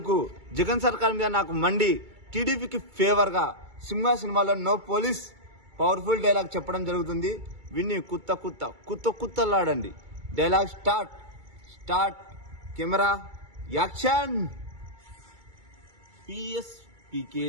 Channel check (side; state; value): left; late; 2.3 ms